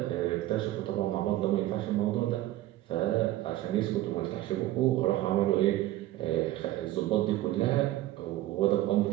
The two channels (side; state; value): left; quieter; 15.2 dB